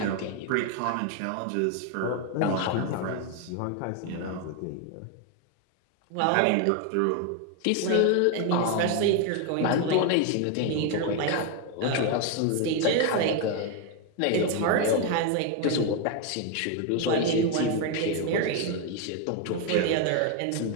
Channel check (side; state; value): both; different; correlation 0.01